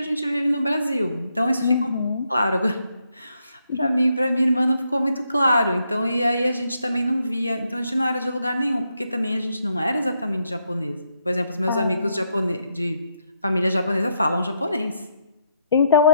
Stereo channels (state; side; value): inverted; both; correlation -0.78